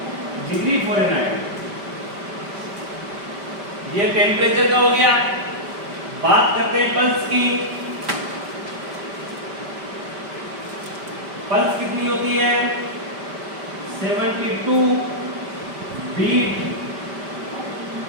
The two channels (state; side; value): late; left; 5.1 ms